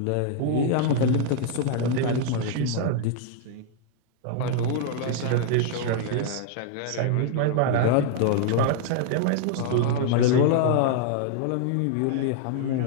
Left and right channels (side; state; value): both; different; correlation -0.01